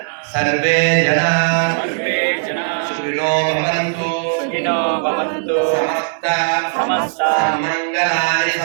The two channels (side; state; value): left; silent; digital silence